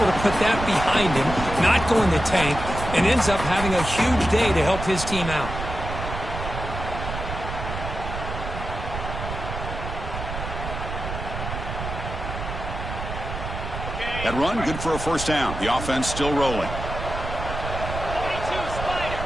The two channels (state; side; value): noise; right; rumble, 6 dB below the sound